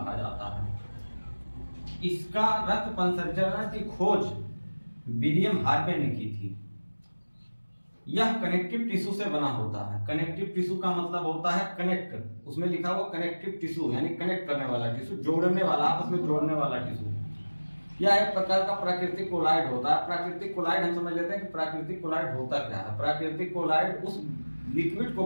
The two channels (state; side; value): inverted; both; correlation -1.00